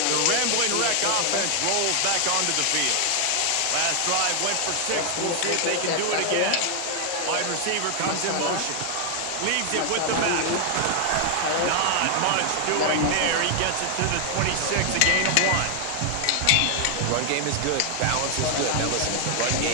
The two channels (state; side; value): different; both; correlation 0.00